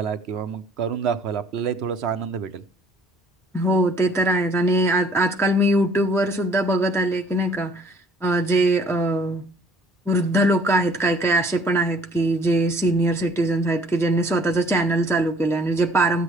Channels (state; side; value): normal; both; correlation 0.58